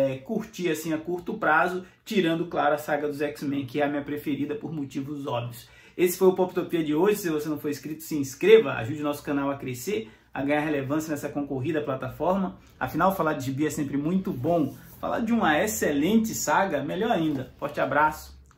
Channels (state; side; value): identical; both; correlation 1.00